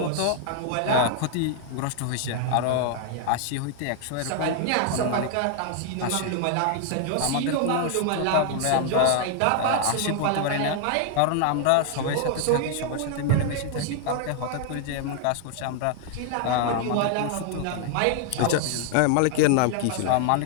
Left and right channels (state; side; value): different; both; correlation 0.00